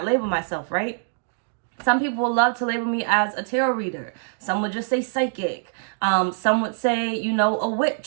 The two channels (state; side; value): silent; left; digital silence